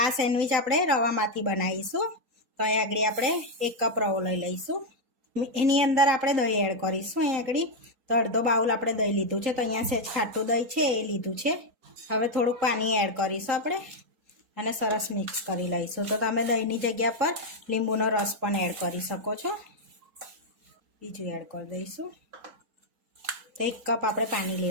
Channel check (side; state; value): left; late; 3.8 ms